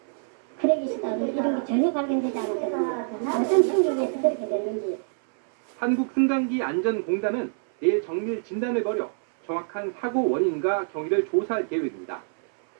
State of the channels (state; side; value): silent; left; 61 dB below the other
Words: 크랙이시다고 이런 게 전혀 발견되지 않았거든요. 어떤 충격에서 그렇게 됐는지. 한국승강기안전공단은 내일 정밀 진단을 벌여 정확한 사고 원인과 경위를 조사할 계획입니다.